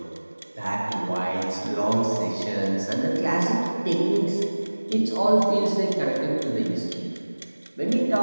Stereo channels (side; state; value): both; inverted; correlation -1.00